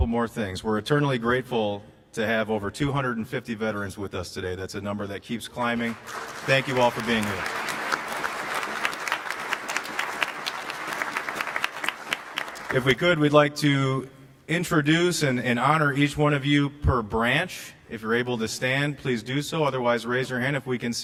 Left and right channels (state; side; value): identical; both; correlation 1.00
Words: more things. We're eternally grateful to have over 250 veterans with us today. That's a number that keeps climbing. Thank you all for being here. If we could, we'd like to introduce and honor each one of you per branch. If you're able to stand, please do so. Otherwise, raise your hand if we can